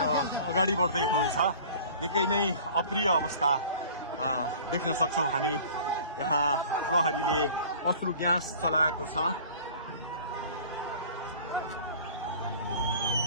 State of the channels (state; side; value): inverted; both; correlation -0.45